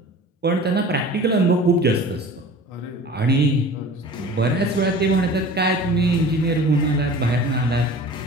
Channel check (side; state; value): both; normal; correlation 0.41